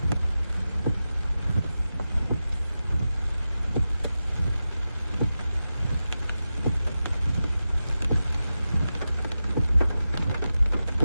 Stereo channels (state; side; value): inverted; both; correlation -0.92